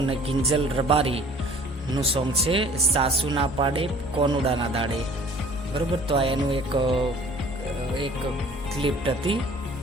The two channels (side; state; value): both; normal; correlation 0.50